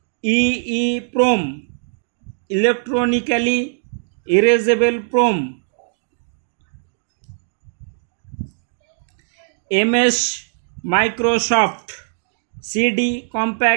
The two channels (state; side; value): silent; left; digital silence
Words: EEPROM electronically erasable PROM, MS Microsoft CD